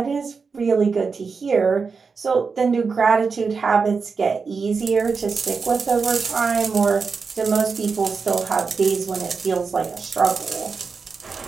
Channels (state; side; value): quieter; left; 5.1 dB